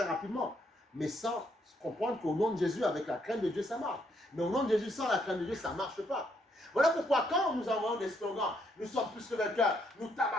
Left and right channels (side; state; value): both; normal; correlation 0.73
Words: rapidement. Mais sans comprendre qu'au nom de Jésus, avec la crainte de Dieu, ça marche. Mais au nom de Jésus, sans la crainte de Dieu, ça ne marche pas. Voilà pourquoi quand nous envoyons des slogans, nous sommes plus que vainqueurs, nous